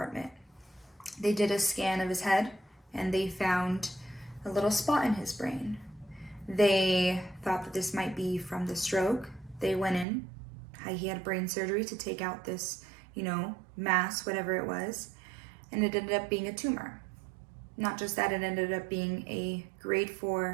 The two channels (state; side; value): drops out; left; at 10.1 s